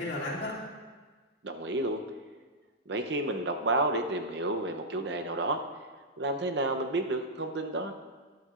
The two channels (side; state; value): both; normal; correlation -0.08